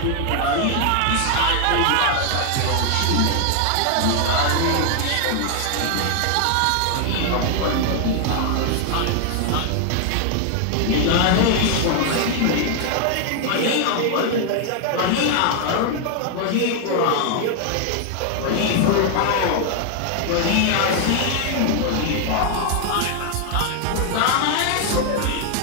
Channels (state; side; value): different; both; correlation 0.00